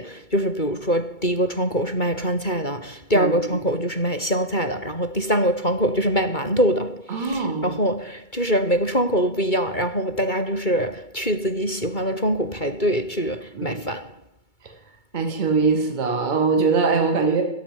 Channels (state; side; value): late; right; 2.3 ms